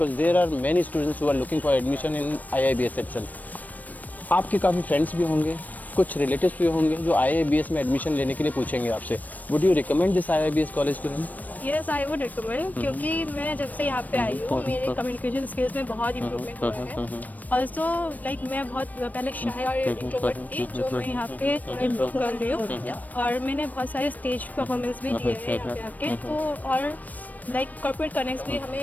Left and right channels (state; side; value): late; right; 0.080 ms